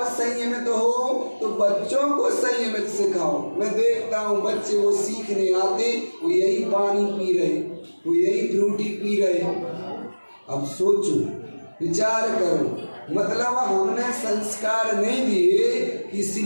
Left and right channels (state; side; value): inverted; both; correlation -1.00